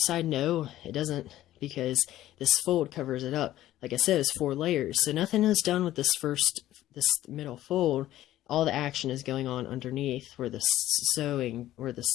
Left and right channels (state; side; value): quieter; right; 14.0 dB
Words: No, it doesn't, because this fold covers it up. Like I said, it's 4 layers, so nothing is done with this middle fold. All the action is going on underneath where the sewing, where the